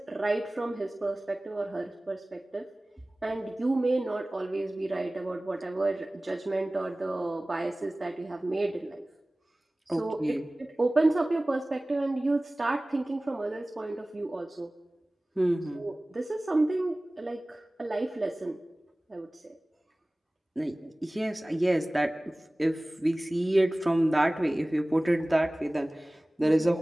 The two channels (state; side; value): normal; both; correlation 0.98